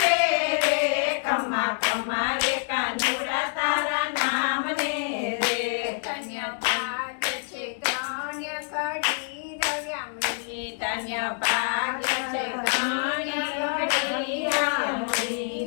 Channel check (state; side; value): silent; right; 61 dB below the other